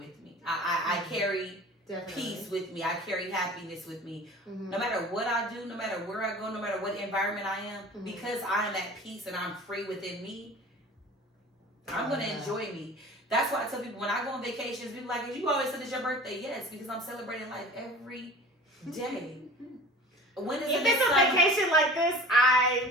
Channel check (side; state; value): both; normal; correlation 0.41